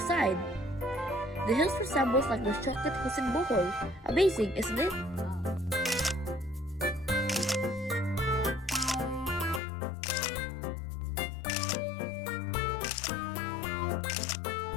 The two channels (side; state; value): right; drops out; at 9.6 s